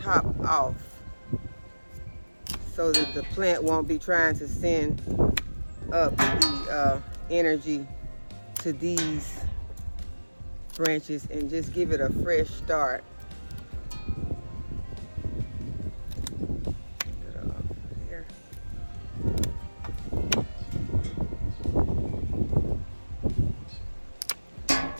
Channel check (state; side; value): inverted; both; correlation -1.00